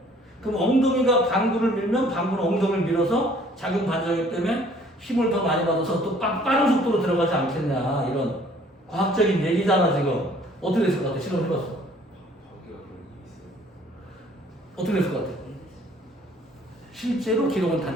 그럼 엉덩이가 방구를 밀면 방구는 엉덩이를 밀어서 작용 반작용 때문에 힘을 더 많이 받아서 또 빠른 속도로 들어가지 않겠냐 이런 과학적인 얘기잖아 지금. 어떻게 됐을 것 같아? 실험해봤어. 어떻게 됐을 것 같아? 실제로 기록은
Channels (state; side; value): normal; both; correlation 0.57